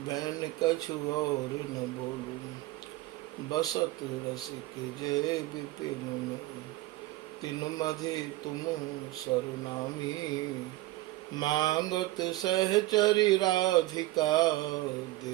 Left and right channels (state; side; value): quieter; left; 18.1 dB